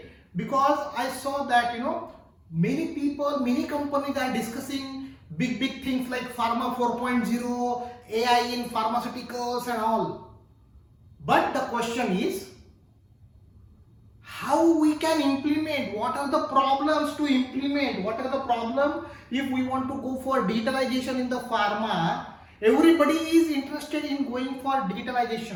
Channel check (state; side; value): identical; both; correlation 1.00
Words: Because I saw that many people, many companies are discussing big things like Pharma 4.0, AI in pharmaceuticals and all. But the question is how we can implement, what are the problems to implement, what are the problems if we want to go for digitalization in the pharma. Everybody is interested in going for